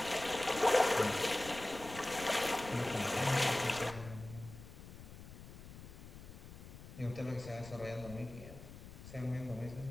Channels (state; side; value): noise; left; rumble, 14 dB below the sound